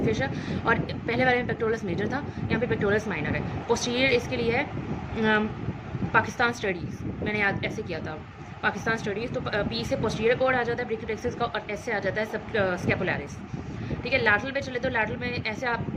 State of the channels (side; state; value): both; identical; correlation 1.00